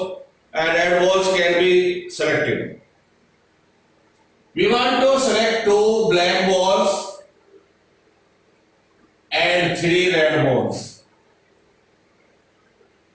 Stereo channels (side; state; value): both; identical; correlation 1.00